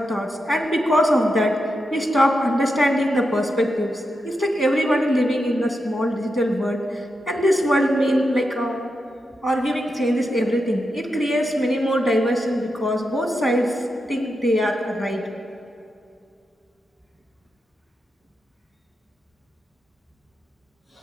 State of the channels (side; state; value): both; normal; correlation 0.87